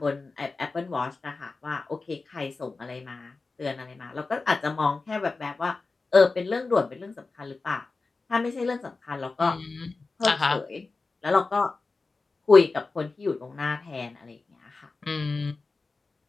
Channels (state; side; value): quieter; right; 3.9 dB